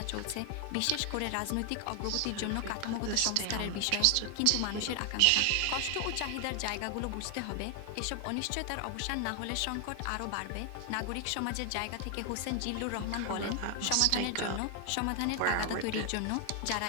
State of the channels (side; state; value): both; different; correlation 0.00